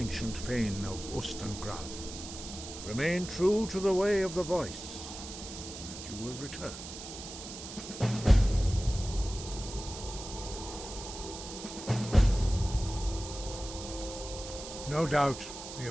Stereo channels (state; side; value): noise; right; hiss, 11 dB below the sound